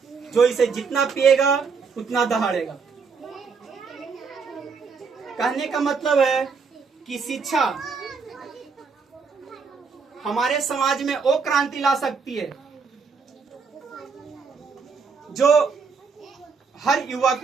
जो इसे जितना पिएगा उतना दहाड़ेगा। कहने का मतलब है कि शिक्षा हमारे समाज में वो क्रांति ला सकती है जो हर युवा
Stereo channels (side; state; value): left; quieter; 5.2 dB